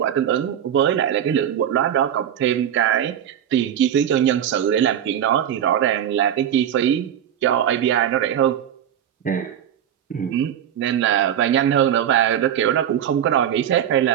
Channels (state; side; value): quieter; left; 9.9 dB